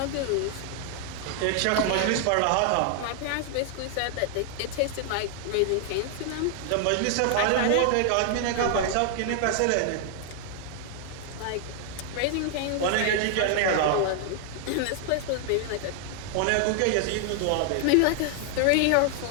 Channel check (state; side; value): different; both; correlation 0.00